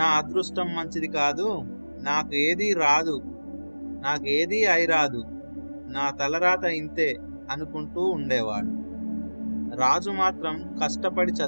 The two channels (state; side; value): inverted; both; correlation -1.00